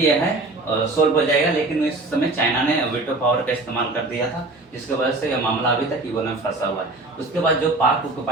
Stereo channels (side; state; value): left; quieter; 3.1 dB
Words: यह है सोल्व हो जाएगा। लेकिन उस समय चाइना ने वीटो पावर का इस्तेमाल कर दिया था, जिसकी वजह से यह मामला अभी तक यूएनओ में फंसा हुआ है। उसके बाद जो पाक